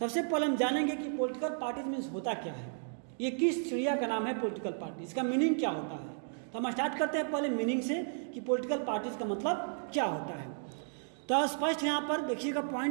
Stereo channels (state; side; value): silent; left; digital silence